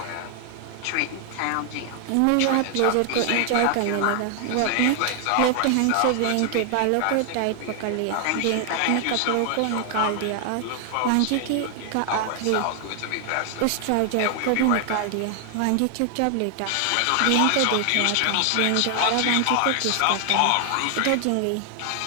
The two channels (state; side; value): different; both; correlation 0.00